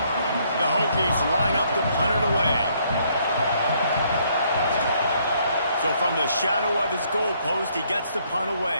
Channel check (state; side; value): inverted; both; correlation -0.68